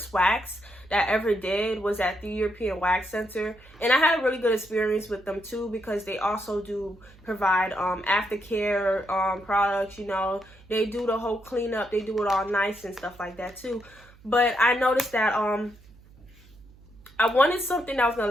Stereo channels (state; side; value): noise; right; hum, 25 dB below the sound